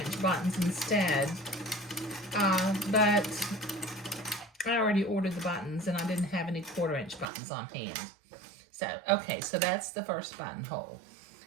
buttons instead. But I already ordered the buttons and I didn't have any 1/4 inch buttons on hand. So, okay, so that's the first buttonhole,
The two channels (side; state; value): left; drops out; at 7.2 s